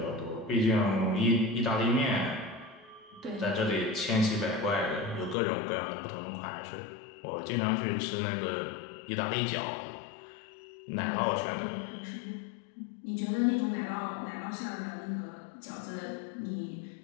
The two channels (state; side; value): drops out; right; at 5.4 s